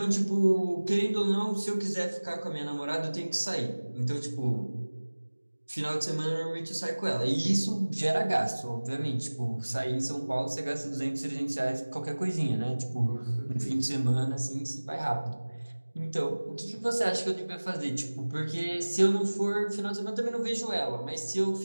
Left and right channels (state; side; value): inverted; both; correlation -1.00